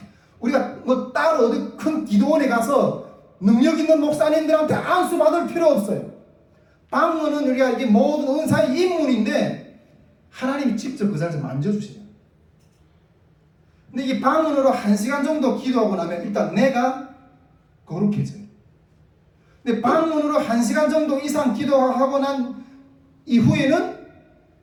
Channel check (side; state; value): both; identical; correlation 1.00